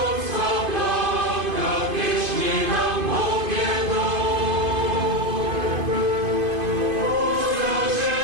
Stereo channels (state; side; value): late; left; 2.5 ms